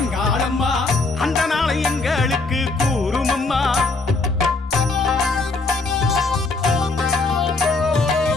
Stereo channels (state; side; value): quieter; right; 3.6 dB